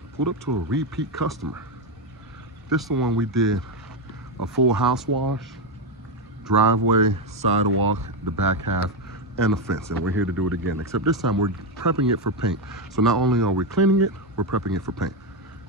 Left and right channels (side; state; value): both; normal; correlation 0.07